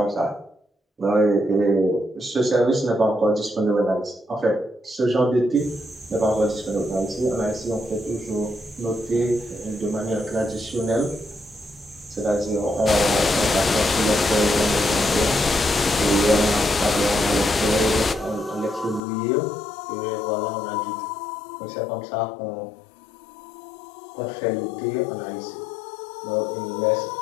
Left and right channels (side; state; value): right; drops out; at 19.0 s